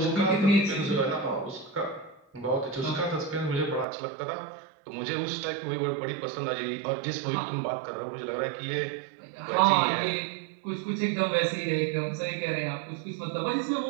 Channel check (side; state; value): left; drops out; at 3.9 s